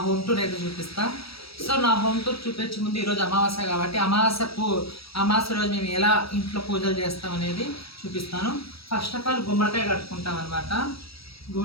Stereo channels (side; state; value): right; late; 0.76 ms